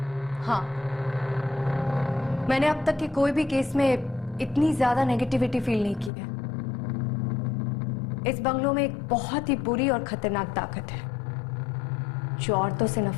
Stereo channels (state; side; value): drops out; right; at 6.1 s